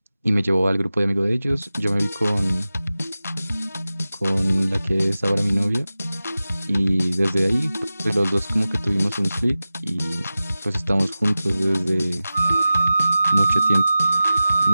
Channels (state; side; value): inverted; both; correlation -0.95